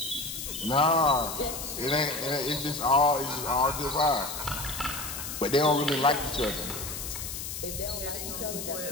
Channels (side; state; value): left; noise; hiss, 7 dB below the sound